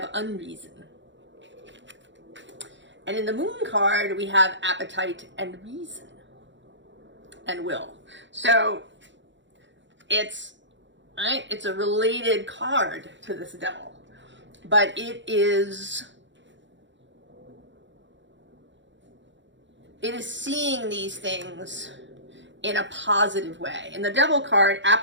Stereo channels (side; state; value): left; late; 0.54 ms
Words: unreason. And in the Moon card, we have appetite and reason and will. So it's a related card to this Devil, but it is seeing these things in a positive way. In the Devil card,